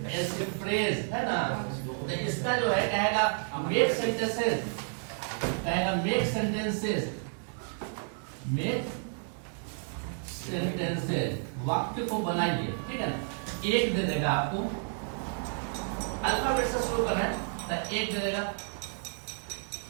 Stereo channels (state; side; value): silent; left; 57 dB below the other